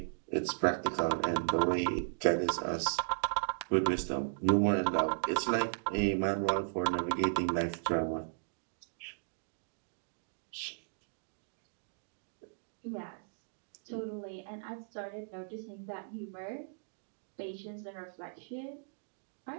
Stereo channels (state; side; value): silent; left; digital silence